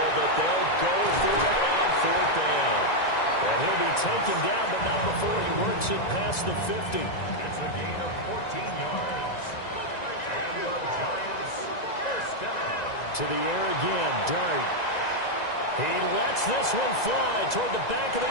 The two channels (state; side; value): late; right; 1.9 ms